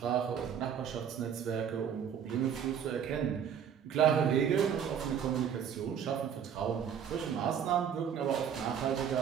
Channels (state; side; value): quieter; left; 8.2 dB